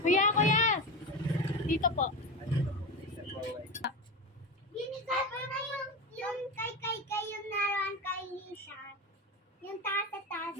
Kuya! Dito po. Binigay ko na yung kay yung naroon kay Nisha. Yung taas.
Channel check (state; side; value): normal; both; correlation 0.22